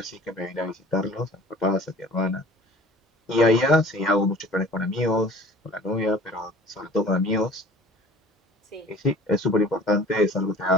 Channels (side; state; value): both; normal; correlation 0.45